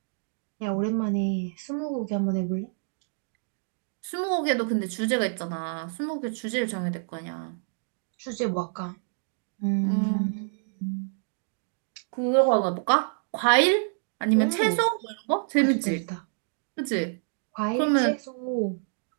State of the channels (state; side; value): silent; left; digital silence